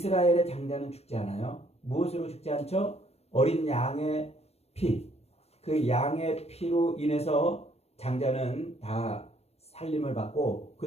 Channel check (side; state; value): right; late; 0.30 ms